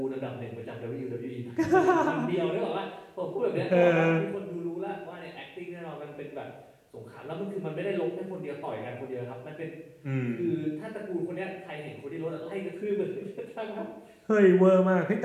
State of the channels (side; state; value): both; identical; correlation 1.00